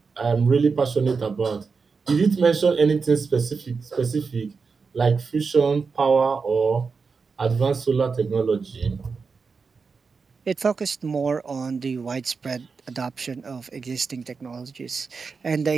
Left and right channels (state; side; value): quieter; left; 5.0 dB